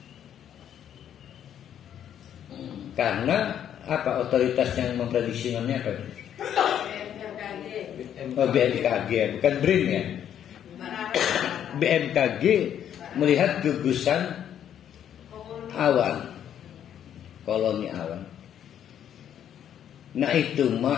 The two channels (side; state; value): right; quieter; 9.8 dB